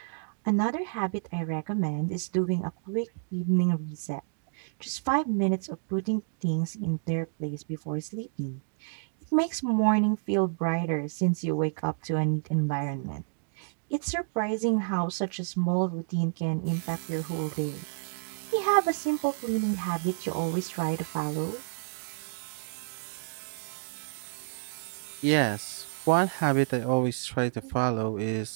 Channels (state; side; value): silent; left; digital silence